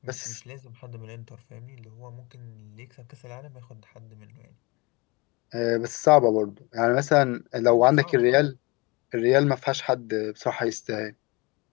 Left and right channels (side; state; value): right; quieter; 26.2 dB